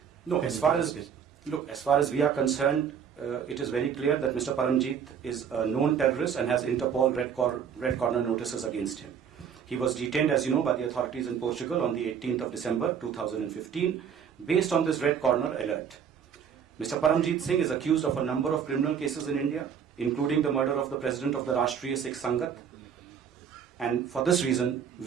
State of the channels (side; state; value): left; quieter; 7.6 dB